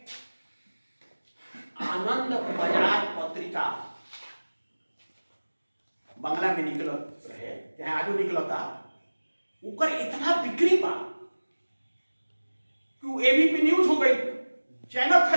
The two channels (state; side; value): inverted; both; correlation -1.00